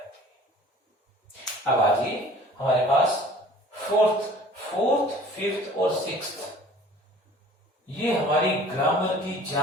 अब आइए हमारे पास फोर्थ, फिफ्थ और सिक्स्थ, ये हमारी ग्रामर की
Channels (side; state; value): both; normal; correlation 0.49